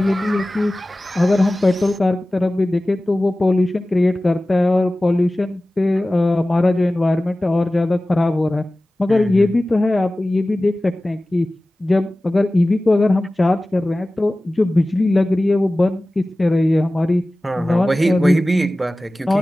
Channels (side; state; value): both; normal; correlation 0.97